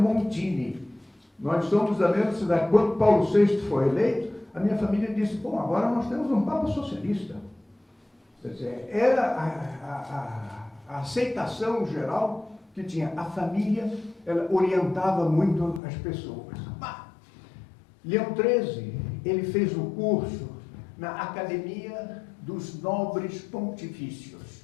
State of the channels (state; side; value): drops out; right; at 15.8 s